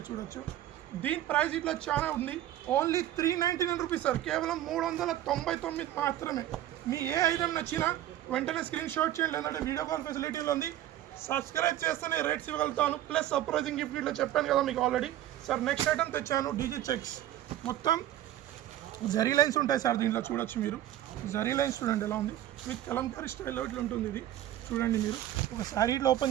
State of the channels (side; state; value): left; quieter; 12.9 dB